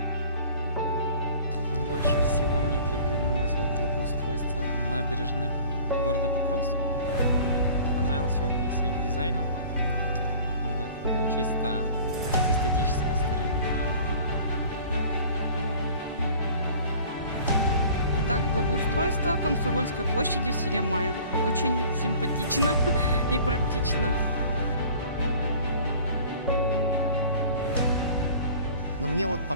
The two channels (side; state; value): both; inverted; correlation -0.47